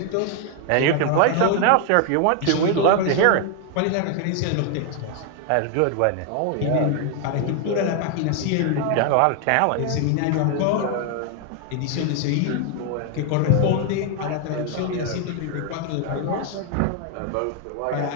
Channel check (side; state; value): both; different; correlation 0.00